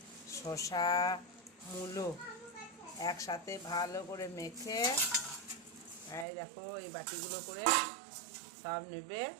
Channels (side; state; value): left; drops out; at 6.2 s